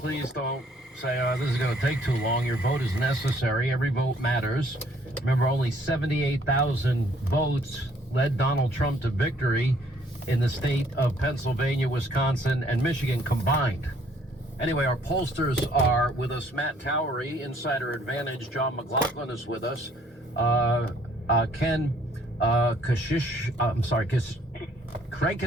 don't say, this is going to take too long. Your vote is necessary. Every vote matters. Remember, only 78,000 votes led Donald Trump to victory in the state of Pennsylvania, Wisconsin, and Michigan combined. Anyway, our pollsters are with us. Matt Towery, Insider Advantage. John McLaughlin is with us. Craig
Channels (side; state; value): both; normal; correlation 0.62